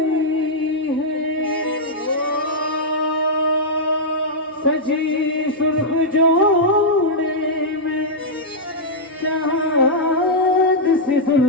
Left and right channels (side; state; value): both; normal; correlation -0.08